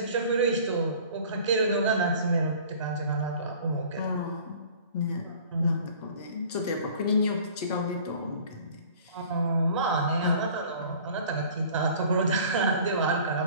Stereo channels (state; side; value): inverted; both; correlation -0.48